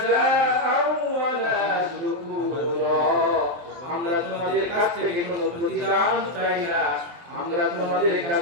ওয়ালা শুকুরা। আমরা তোমাদের কাছ থেকে কোনো প্রতিদান চাই না, আমরা তোমাদের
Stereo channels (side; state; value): left; late; 23 ms